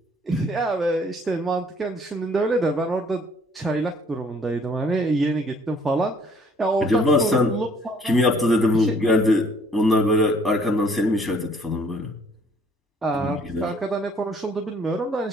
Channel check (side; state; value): both; normal; correlation 0.60